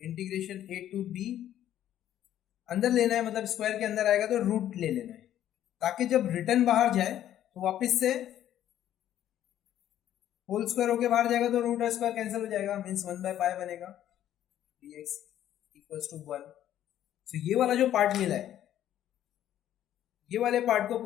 a to b अंदर लेना है, मतलब स्क्वायर के अंदर आएगा तो रूट ले लेना है, ताकि जब रिटर्न बाहर जाए तो वापस से होल स्क्वायर होके बाहर जाएगा तो रूट स्क्वायर कैंसिल हो जाएगा, मींस 1 बाय पाई बनेगा dx इक्वल्स टू 1। सो ये वाला जो पार्ट मिला है, ये वाले पार्ट को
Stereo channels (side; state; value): right; quieter; 11.6 dB